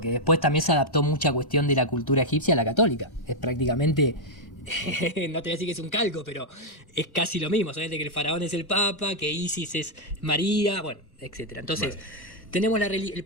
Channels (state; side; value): late; right; 1.1 ms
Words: después también se adaptó mucha cuestión de la cultura egipcia a la católica. Es prácticamente, no te voy a decir que es un calco, pero es casi lo mismo. Solamente que el faraón es el papa, que Isis es María, bueno, etcétera. Entonces, tenemos el